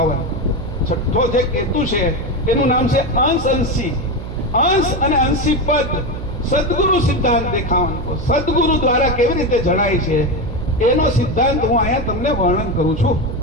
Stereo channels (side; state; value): right; noise; hum, 8 dB below the sound